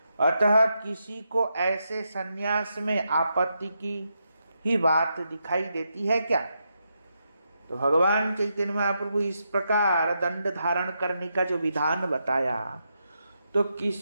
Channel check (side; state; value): both; inverted; correlation -0.83